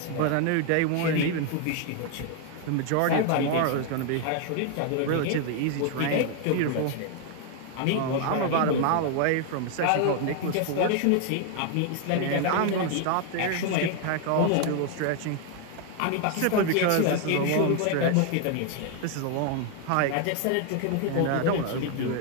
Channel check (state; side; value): different; both; correlation 0.00